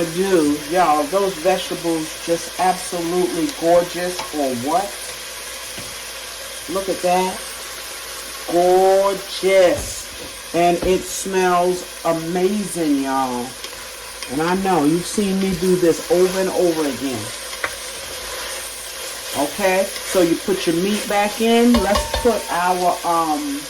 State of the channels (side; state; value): both; identical; correlation 1.00